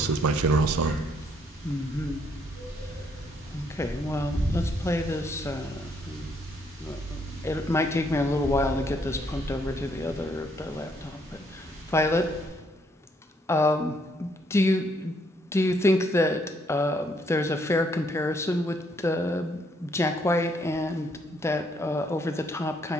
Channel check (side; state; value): both; normal; correlation 0.70